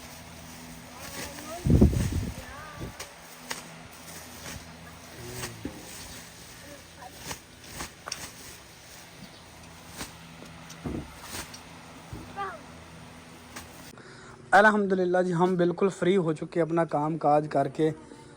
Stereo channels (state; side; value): identical; both; correlation 1.00